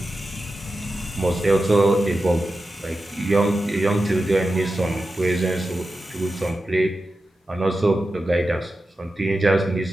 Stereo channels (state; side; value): normal; both; correlation 0.92